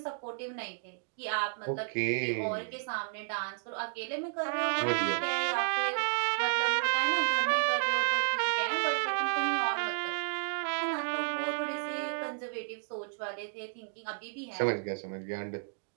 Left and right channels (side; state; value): left; silent; digital silence